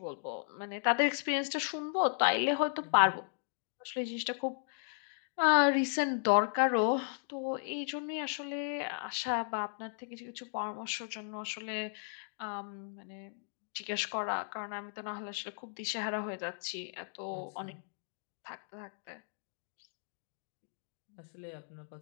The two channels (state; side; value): silent; right; digital silence